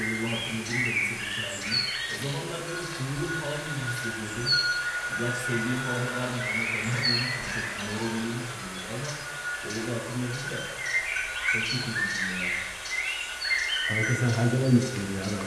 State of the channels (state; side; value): identical; both; correlation 1.00